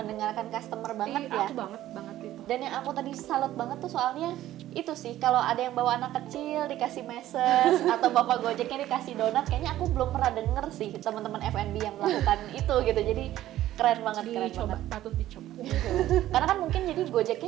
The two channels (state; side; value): quieter; left; 13.8 dB